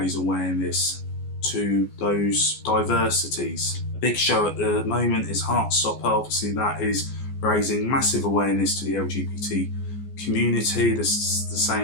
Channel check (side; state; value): right; late; 14 ms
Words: awareness to those diversities. A big show at the moment is Heartstopper. Obviously that is raising massive awareness to the LGBT community. This the